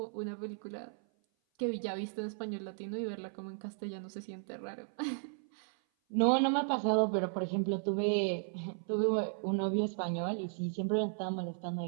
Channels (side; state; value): left; silent; 54 dB below the other